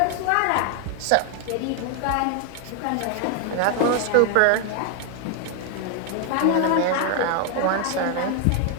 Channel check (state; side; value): different; both; correlation 0.00